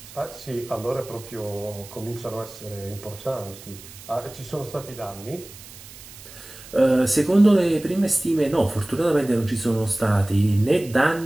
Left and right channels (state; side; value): noise; right; hiss, 18 dB below the sound